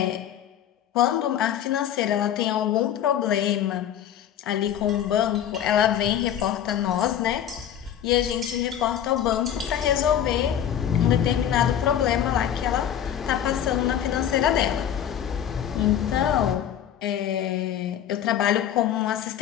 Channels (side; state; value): right; quieter; 10.0 dB